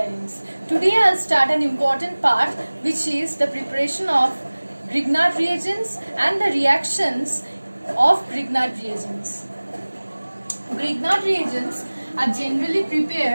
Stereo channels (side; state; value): both; inverted; correlation -1.00